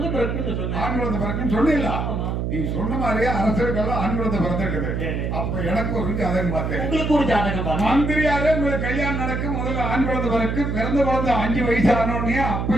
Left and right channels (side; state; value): right; noise; hum, 1 dB below the sound